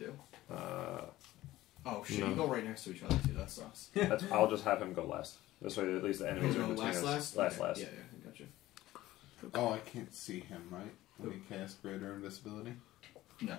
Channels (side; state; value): right; quieter; 16.1 dB